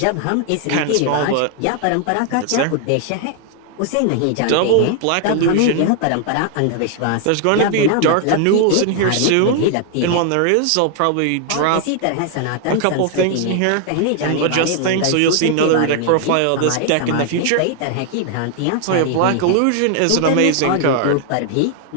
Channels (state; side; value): different; both; correlation 0.00